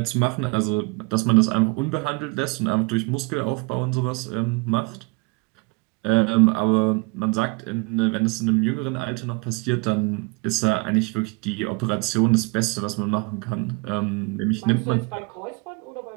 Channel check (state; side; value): quieter; left; 29.1 dB